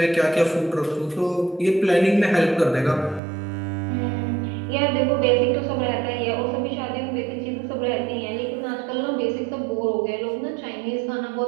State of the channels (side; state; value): left; drops out; at 3.2 s